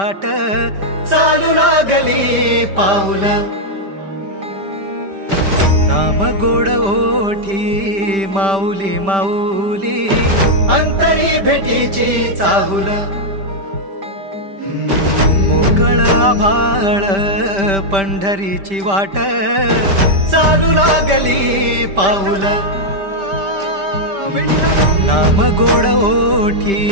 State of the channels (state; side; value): late; left; 5.1 ms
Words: चालू लागली पाऊल नाम गोड ओठी माऊली माऊली अंतरी भेटीची चाहुल मोकळ आभाळ पंढरीची वाट चालू लागली पाऊल नाम गोड ओठी